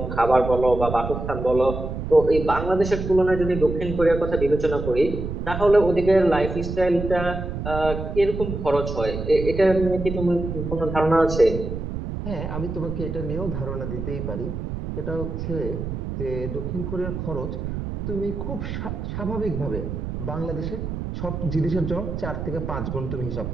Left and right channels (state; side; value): noise; right; rumble, 5 dB below the sound